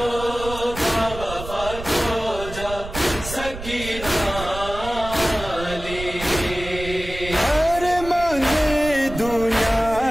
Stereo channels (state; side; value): noise; right; rumble, 11 dB below the sound